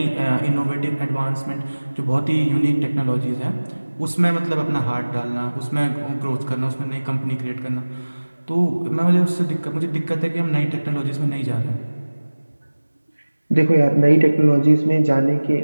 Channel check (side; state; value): both; inverted; correlation -1.00